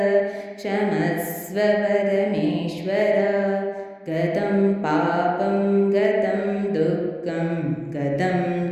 ಕ್ಷಮಸ್ವ ಪರಮೇಶ್ವರ. ಗತಂ ಪಾಪಂ ಗತಂ ದುಃಖಂ ಗತಂ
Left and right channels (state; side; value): identical; both; correlation 1.00